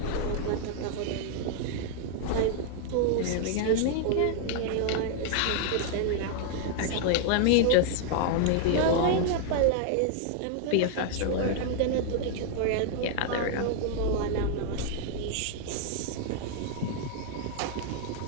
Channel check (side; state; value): both; different; correlation 0.00